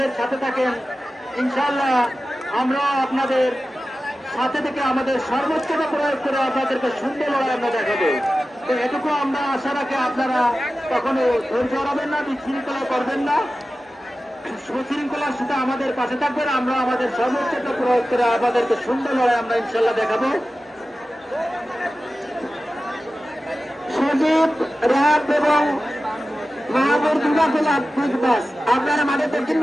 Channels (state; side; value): normal; both; correlation 0.94